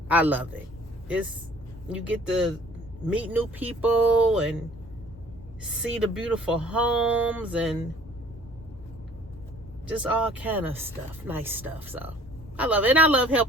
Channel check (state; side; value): normal; both; correlation 0.53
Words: I love it. You get to meet new people and see the beautiful homes and just all kind of stuff, nice stuff. So I love it, and I love